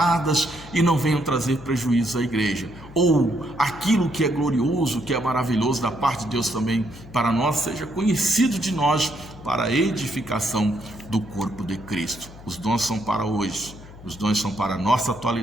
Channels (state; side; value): noise; left; hum, 18 dB below the sound